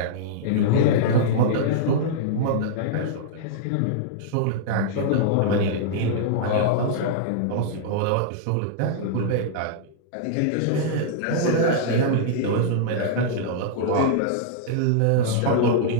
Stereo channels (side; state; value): both; different; correlation -0.02